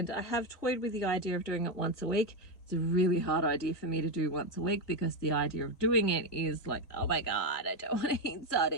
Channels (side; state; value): right; late; 2.5 ms